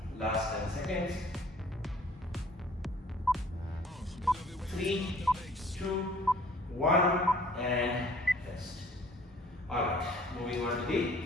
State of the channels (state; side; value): normal; both; correlation 0.55